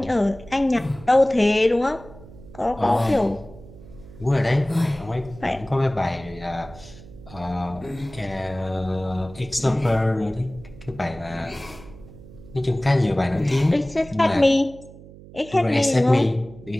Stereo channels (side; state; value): right; noise; hum, 19 dB below the sound